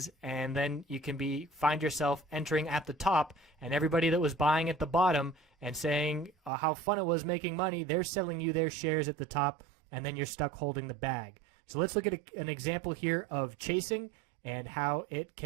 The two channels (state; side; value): drops out; left; at 6.5 s